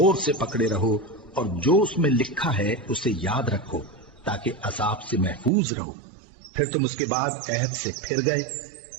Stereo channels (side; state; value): left; drops out; at 5.5 s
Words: سے پکڑے رہو، اور جو اس میں لکھا ہے اسے یاد رکھو تاکہ عذاب سے محفوظ رہو، پھر تم اس کے بعد عہد سے پھر گئے،